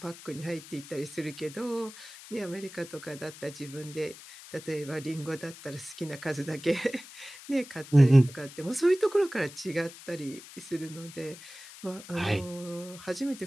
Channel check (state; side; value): noise; left; hiss, 16 dB below the sound